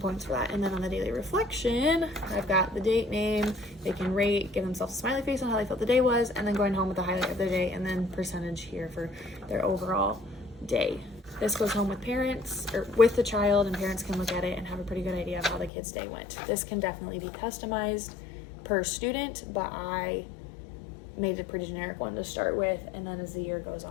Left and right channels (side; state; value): right; drops out; at 15.7 s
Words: for that. And then on the daily reflection, I've got the date, name, they can rate, give themselves a smiley face on how they felt the day was, and then going home with the highlight of their day, and then percentage here for their overall day. This goes home with parents or with the child, and parents can look at it and have a pretty good idea of how the kid's day went. This can definitely be customized per student, but I made a pretty generic one to start with, and then as the year goes